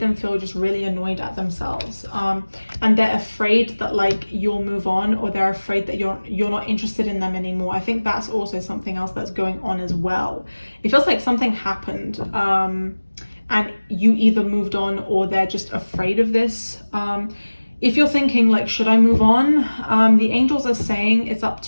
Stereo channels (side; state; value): both; inverted; correlation -1.00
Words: them feel just really annoyed at themselves, and they're afraid that like you'll move on, or they're afraid that you're not interested in them anymore. I think that's also something else that's going on as well. It feels like something happened, and you either moved on or they're just afraid of this. If you're thinking like, should I move on? The angels are saying it's up